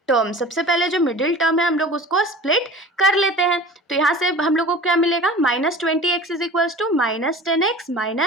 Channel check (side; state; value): both; normal; correlation 0.39